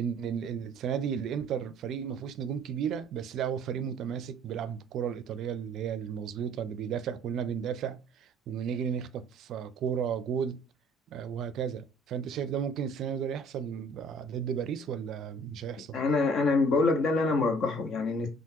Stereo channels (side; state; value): both; normal; correlation 0.54